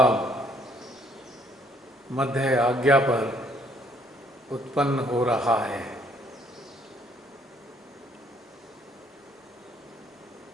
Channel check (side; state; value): both; normal; correlation 0.64